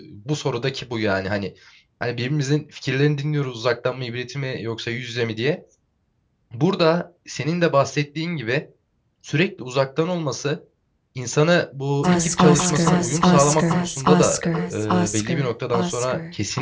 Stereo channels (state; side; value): identical; both; correlation 1.00